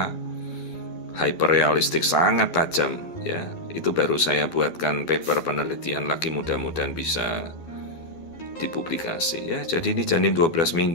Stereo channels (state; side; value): late; right; 12 ms